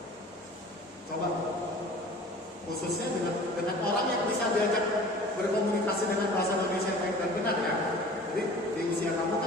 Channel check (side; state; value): both; normal; correlation 0.44